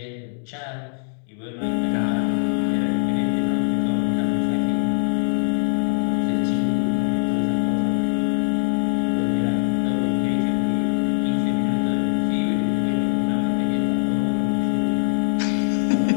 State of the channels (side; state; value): right; silent; digital silence